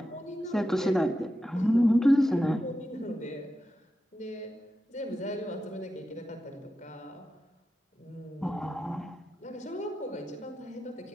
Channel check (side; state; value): both; normal; correlation 0.90